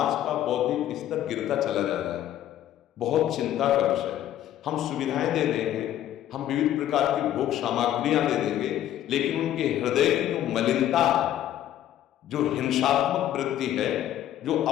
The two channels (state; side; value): quieter; right; 12.0 dB